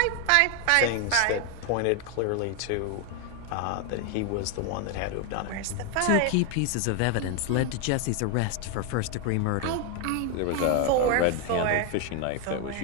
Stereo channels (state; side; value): different; both; correlation 0.01